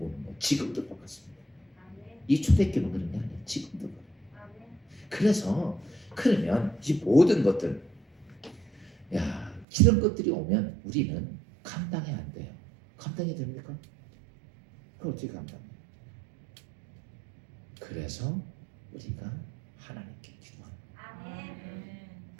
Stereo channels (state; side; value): drops out; left; at 9.7 s